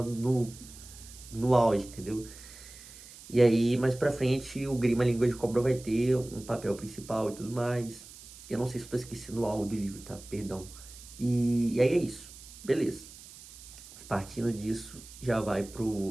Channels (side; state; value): right; noise; hiss, 18 dB below the sound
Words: no auge, entendeu? E aí, mais pra frente, o Grima Língua de Cobra vai ter um papel principal e tudo mais. Eu não sei se eu tô esquecendo algo do livro, tá? Perdão. E aí é isso. Beleza. Partindo disso, já vai